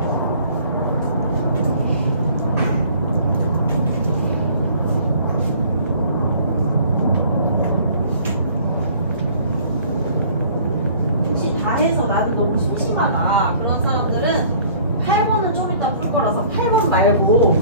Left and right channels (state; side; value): inverted; both; correlation -0.53